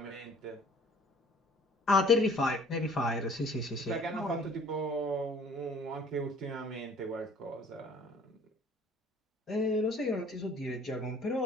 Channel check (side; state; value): both; normal; correlation 0.53